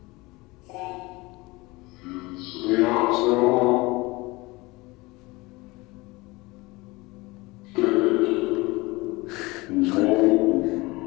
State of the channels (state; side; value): quieter; right; 22.8 dB